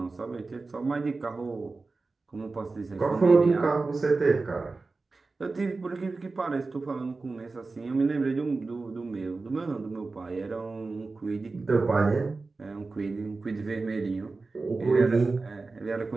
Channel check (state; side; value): quieter; left; 3.8 dB